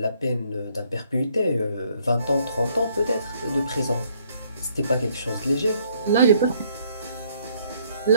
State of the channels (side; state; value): both; inverted; correlation -0.66